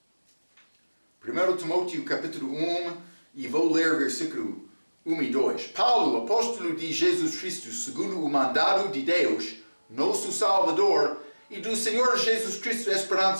1 Timóteo capítulo 1 e vou ler versículo 1 e 2. Paulo, apóstolo de Jesus Cristo, segundo o mandado de Deus, nosso Salvador, e do Senhor Jesus Cristo,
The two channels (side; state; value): both; inverted; correlation -1.00